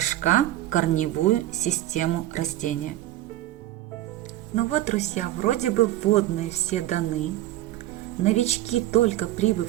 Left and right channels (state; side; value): quieter; left; 14.8 dB